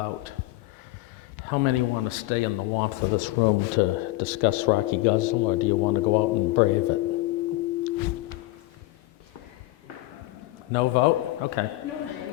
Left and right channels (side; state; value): right; quieter; 18.7 dB